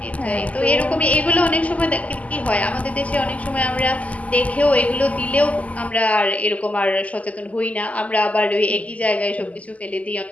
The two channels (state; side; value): late; right; 0.072 ms